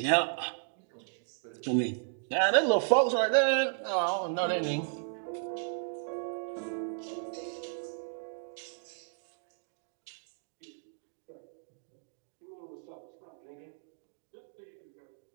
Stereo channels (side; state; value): left; silent; digital silence